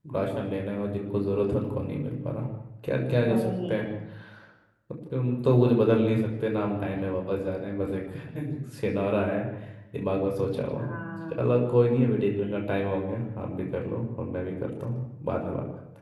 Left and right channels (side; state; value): both; identical; correlation 1.00